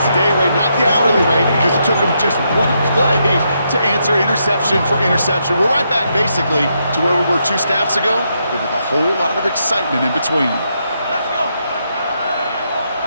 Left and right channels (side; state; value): both; inverted; correlation -0.79